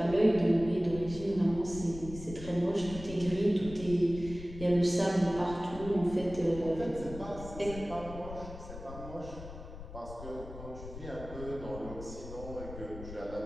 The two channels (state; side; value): noise; left; rumble, 12 dB below the sound